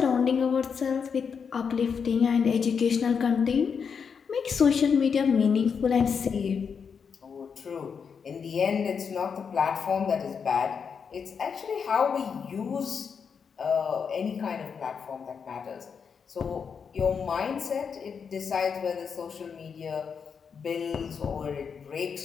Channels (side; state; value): right; quieter; 6.3 dB